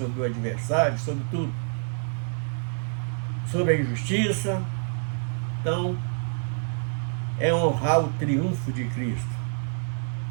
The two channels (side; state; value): left; silent; digital silence